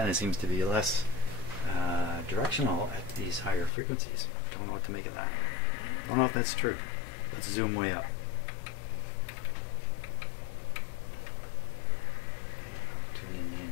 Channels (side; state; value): right; drops out; at 3.7 s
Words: seems to be less directional at these higher frequencies. Don't know what to make of that. Don't know if that's true. Let's zoom way up. Okay, tuning the